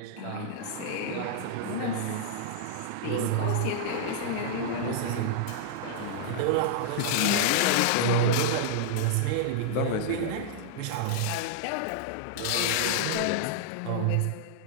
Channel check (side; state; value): both; different; correlation -0.02